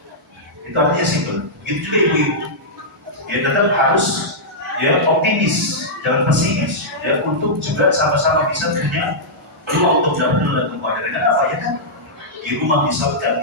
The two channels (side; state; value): both; normal; correlation -0.11